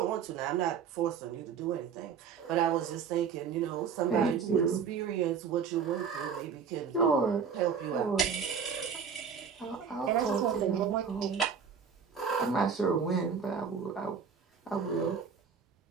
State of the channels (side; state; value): left; quieter; 6.5 dB